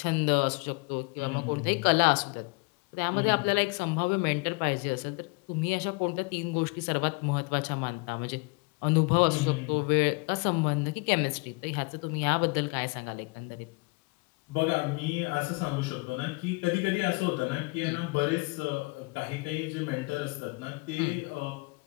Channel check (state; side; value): quieter; right; 29.4 dB